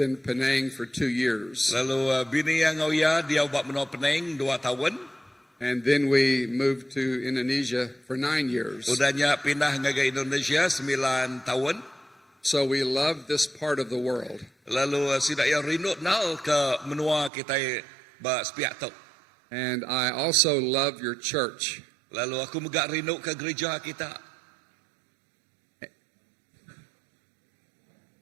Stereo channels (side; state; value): left; drops out; at 17.3 s